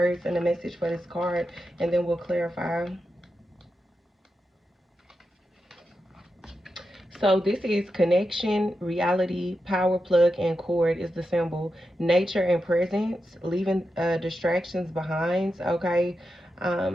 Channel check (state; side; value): normal; both; correlation 0.89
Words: and the message for this card, and then we'll clarify. So this is connection, reality, power plug, and cord is the symbol. Nature and presence, leaving distractions behind, okay?